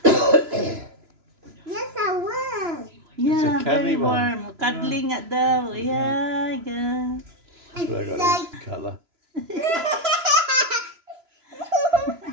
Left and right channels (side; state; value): left; late; 2.9 ms